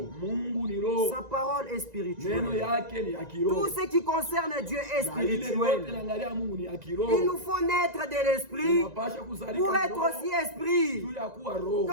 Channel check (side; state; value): left; late; 1.9 ms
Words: Mungu ni roho. Sa parole est Neno spirituelle. yake ni ya Tout kiroho. ce qui concerne Dieu est Na ile yote spirituel. naangalia Mungu ni ya Il kiroho. nous faut naître de l'esprit Tunapasha kuzalika pour être roho aussi esprit. juu ya kuwa roho.